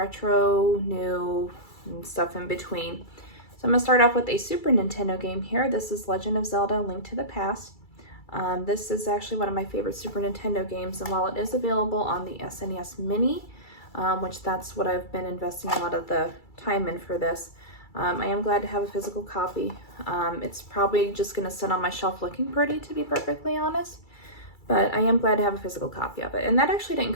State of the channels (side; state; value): right; late; 2.3 ms